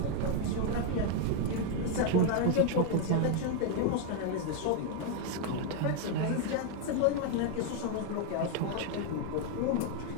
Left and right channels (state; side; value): different; both; correlation 0.00